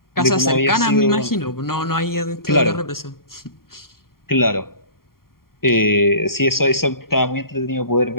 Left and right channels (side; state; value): right; late; 0.92 ms